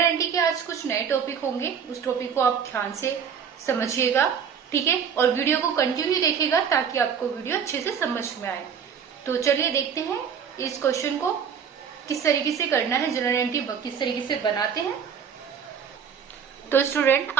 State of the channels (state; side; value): quieter; left; 7.3 dB